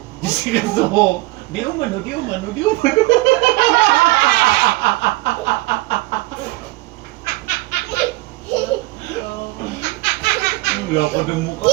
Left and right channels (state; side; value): quieter; left; 21.0 dB